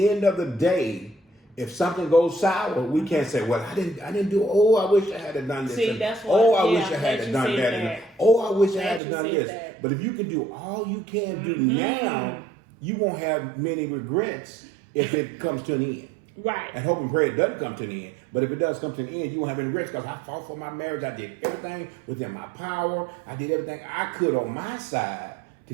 end of the day, if something goes sour, we can't say, well, I didn't do, I wish I had done this. See, that's what, I wish I had done that. I wish I had done this. That. But if you can do all you can do now, you won't have many regrets if it comes to an end. Right. And hope and pray it doesn't come to the end. But if it does come to the end, you won't have any regrets, because I fought for my marriage. I did everything within my power. I did everything I could on my side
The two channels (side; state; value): left; drops out; at 9.0 s